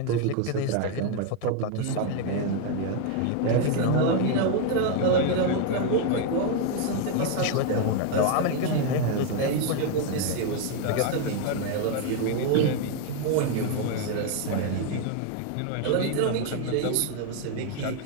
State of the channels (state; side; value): different; both; correlation 0.01